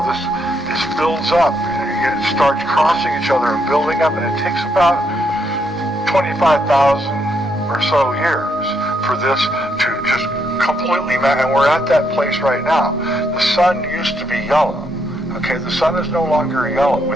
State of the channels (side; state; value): both; normal; correlation 0.76